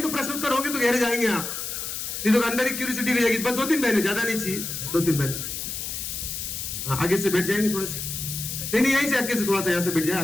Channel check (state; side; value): noise; left; hiss, 5 dB below the sound